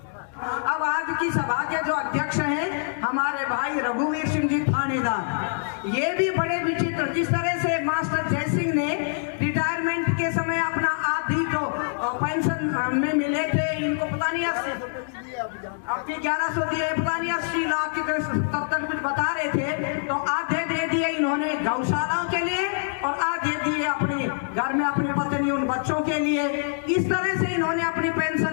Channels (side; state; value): right; silent; digital silence